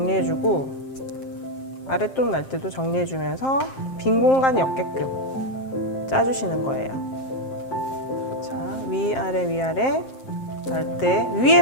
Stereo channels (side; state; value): right; late; 7.6 ms